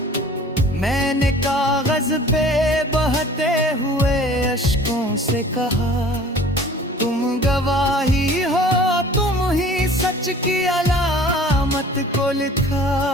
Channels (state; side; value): normal; both; correlation 0.47